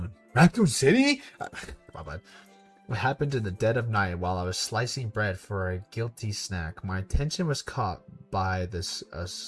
Raccoon City? My bad. What happened in the dead of night while I was slicing bread for a guilty snack? My attention was caught by the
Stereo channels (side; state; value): both; identical; correlation 1.00